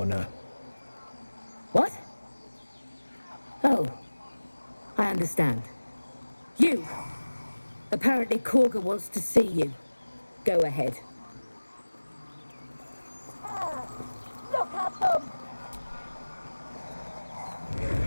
What? Oh, I understand. You. Apparently Korga wants to see you. Go ahead. Look at them.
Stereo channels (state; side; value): inverted; both; correlation -1.00